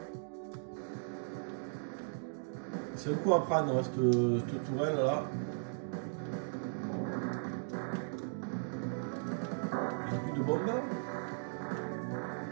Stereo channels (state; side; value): silent; left; digital silence